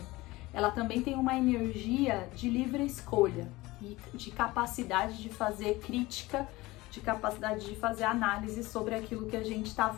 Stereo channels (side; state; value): right; quieter; 20.1 dB